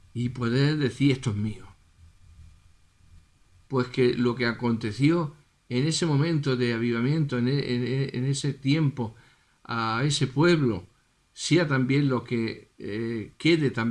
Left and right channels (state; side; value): identical; both; correlation 1.00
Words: y poder decir esto es mío. Pues que lo que aconteció en ese momento de avivamiento, en ese tiempo, a ese pueblo, sea también lo que quede